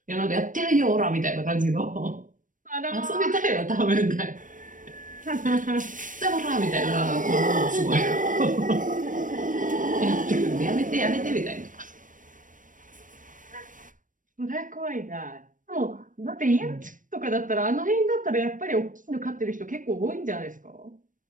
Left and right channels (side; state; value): left; late; 0.38 ms